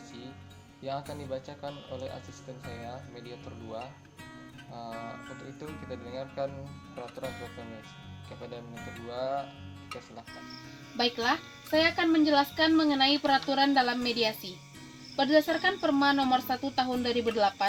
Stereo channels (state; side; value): identical; both; correlation 1.00